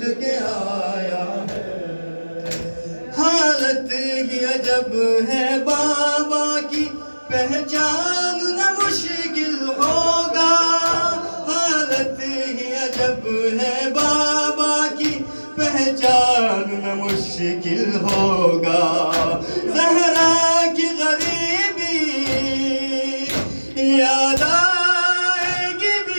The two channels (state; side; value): inverted; both; correlation -1.00